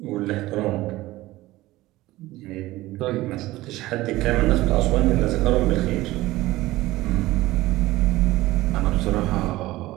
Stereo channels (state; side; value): quieter; left; 17.7 dB